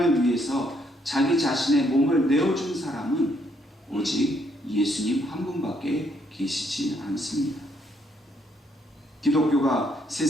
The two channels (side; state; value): both; normal; correlation 0.72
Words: 위해서 자기 자신의 몸을 내어준 사람은 오직 예수님 한 분밖에 계시지 않습니다. 기독교가